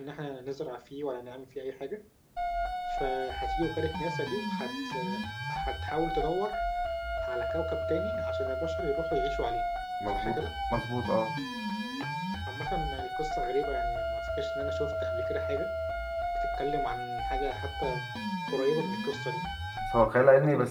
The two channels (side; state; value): both; identical; correlation 1.00